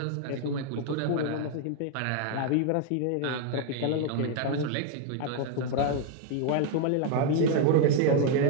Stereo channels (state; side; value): different; both; correlation 0.00